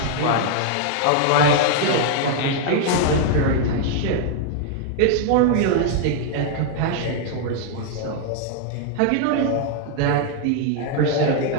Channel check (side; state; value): both; different; correlation 0.00